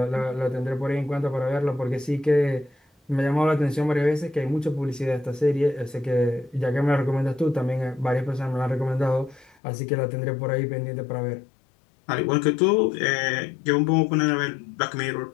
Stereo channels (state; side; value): drops out; right; at 9.6 s